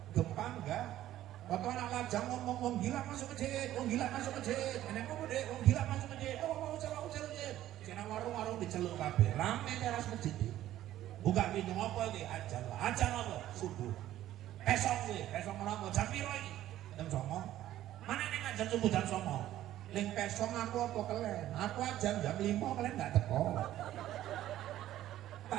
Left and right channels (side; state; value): left; quieter; 13.3 dB